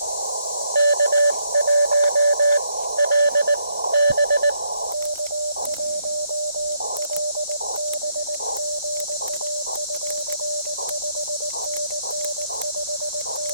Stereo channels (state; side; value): inverted; both; correlation -0.74